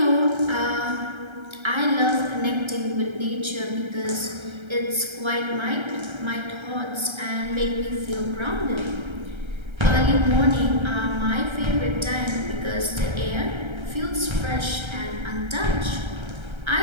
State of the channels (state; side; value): late; left; 1.3 ms